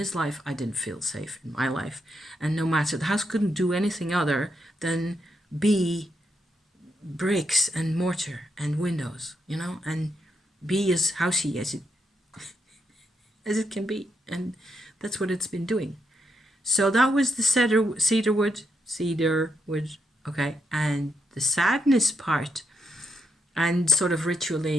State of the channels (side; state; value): both; normal; correlation 0.81